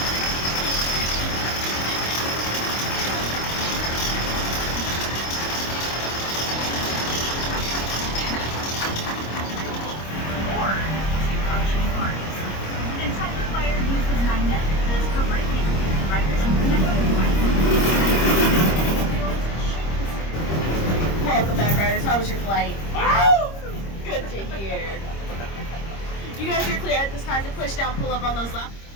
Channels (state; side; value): late; right; 25 ms